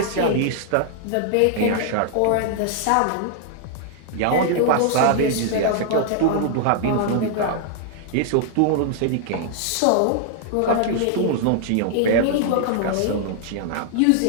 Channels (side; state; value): both; different; correlation -0.01